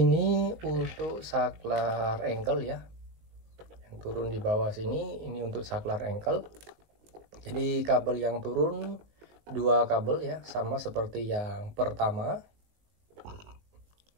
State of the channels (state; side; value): late; left; 19 ms